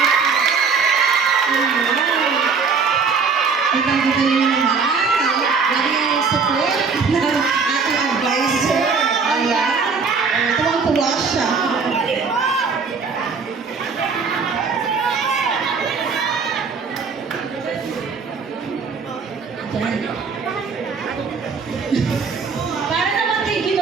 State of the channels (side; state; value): left; quieter; 5.1 dB